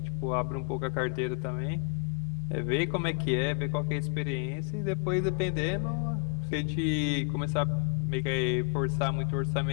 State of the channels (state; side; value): quieter; right; 39.1 dB